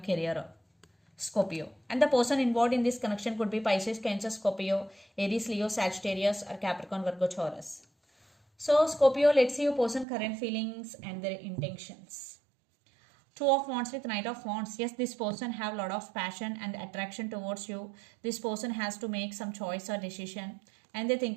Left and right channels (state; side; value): drops out; left; at 10.1 s